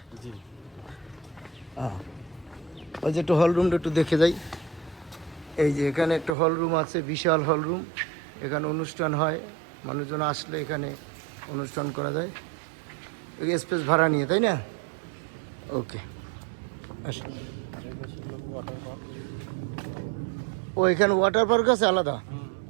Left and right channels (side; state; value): left; drops out; at 6.4 s